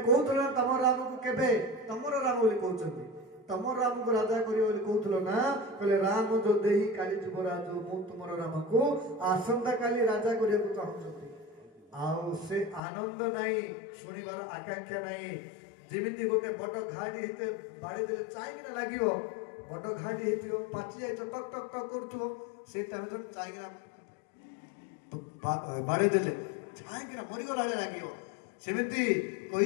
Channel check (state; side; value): drops out; right; at 12.8 s